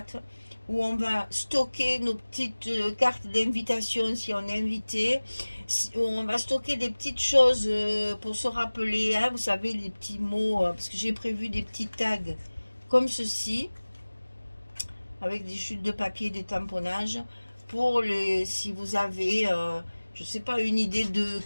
où on va stocker nos petites cartes d'invitation si on est invité, où on va stocker des petites choses pour se rappeler, hein, vous savez, les petits mots, parce que j'ai prévu des petits tags comme ceci, avec des chutes de papier, des tamponnages, pour les, si vous avez, je sais pas, une idée de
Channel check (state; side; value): inverted; both; correlation -1.00